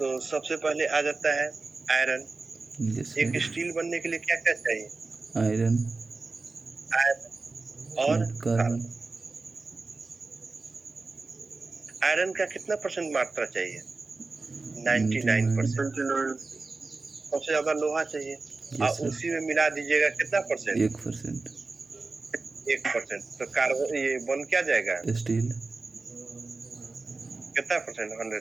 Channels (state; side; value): quieter; left; 3.7 dB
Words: सबसे पहले आ जाता है आयरन। यस एक सर। स्टील बनने के लिए क्या क्या चाहिए? आयरन आयरन और एंड कार्बन। कार्बन। आयरन का कितना परसेंट मात्रा चाहिए? 99%। 99। सबसे ज्यादा लोहा चाहिए, यस और सर। उसी में मिला दीजिएगा कितना परसेंट? 1%। 1%। तो कार्बन ये बन क्या जाएगा? स्टील। कितना परसेंट?